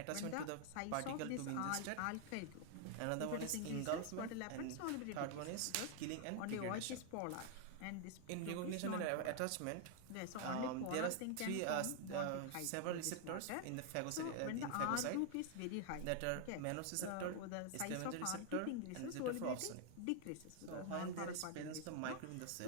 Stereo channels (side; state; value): both; different; correlation 0.00